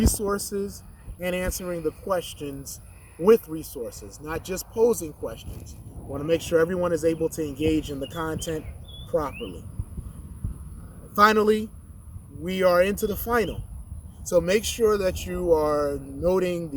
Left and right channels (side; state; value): both; identical; correlation 1.00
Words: and answering the questions with resources, not just posing questions. I want to make sure everyone is able to engage in the content properly. Finally, we are into the final. So make sure that you are noting